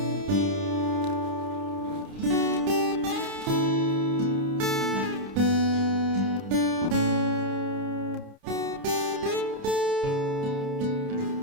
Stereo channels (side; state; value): left; late; 30 ms